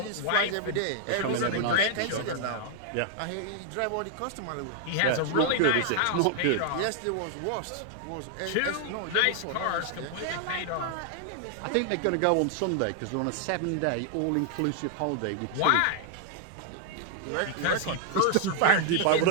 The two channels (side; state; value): both; different; correlation 0.00